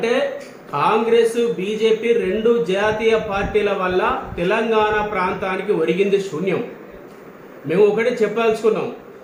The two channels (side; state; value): both; identical; correlation 1.00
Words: కాంగ్రెస్ బీజేపీ రెండు జాతీయ పార్టీల వల్ల తెలంగాణ ప్రాంతానికి ఒరిగింది శూన్యం. మేము ఒకటి చెప్పదలుచుకున్నాం,